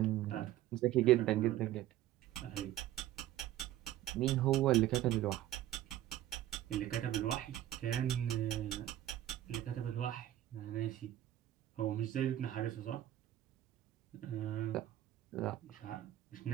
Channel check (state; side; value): quieter; left; 13.4 dB